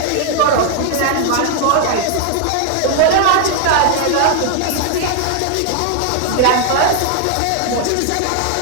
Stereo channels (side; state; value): both; different; correlation 0.00